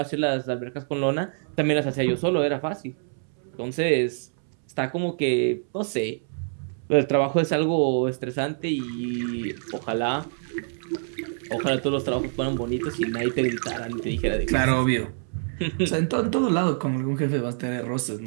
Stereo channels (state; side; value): silent; left; 61 dB below the other